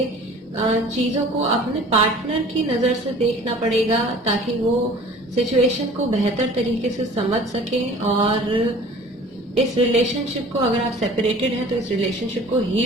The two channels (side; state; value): both; normal; correlation 0.46